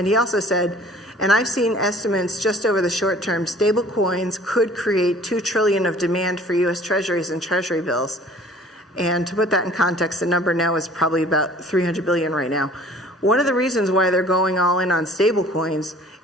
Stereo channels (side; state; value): both; normal; correlation 0.50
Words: he also said, and I've seen estimates just over the short term, stable coins could create $2 trillion of demand for U.S. Treasuries and Treasury bills. And to put that in context, the number now is probably about $300 billion right now. One of the reasons why they're going all in on stable coins